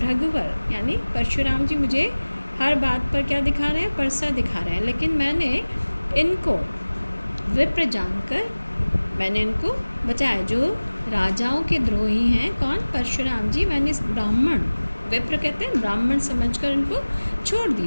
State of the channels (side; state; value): both; inverted; correlation -1.00